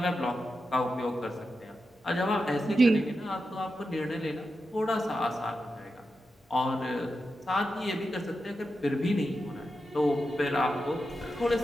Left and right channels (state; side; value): normal; both; correlation 0.89